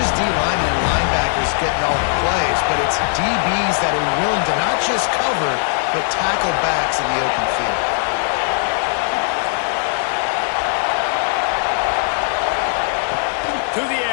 D-linemen and linebackers getting all the plays, but it's DBs that are willing to not just cover, but tackle backs in the open field. To the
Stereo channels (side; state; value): right; silent; 67 dB below the other